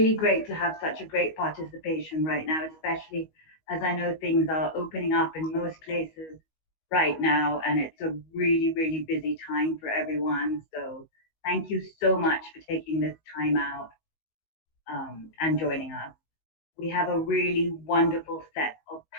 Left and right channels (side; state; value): right; late; 19 ms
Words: great to have such a great participation right now, especially as I know things are opening up in most places right now, and it's a really, really busy time for everyone. So thank you so much for taking this time out and joining us. We have a really wonderful set of